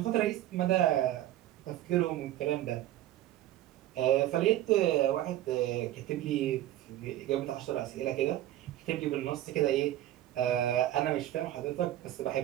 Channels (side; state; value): left; quieter; 13.6 dB